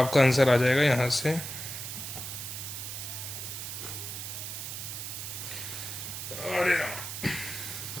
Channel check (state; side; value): noise; right; hiss, 6 dB below the sound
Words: आंसर आ जाएगा यहाँ से, अरे